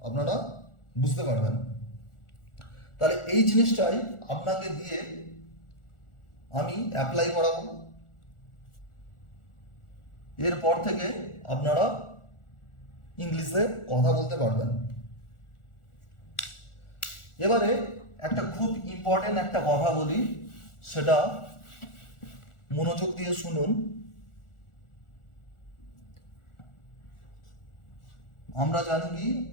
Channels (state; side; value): late; right; 1.4 ms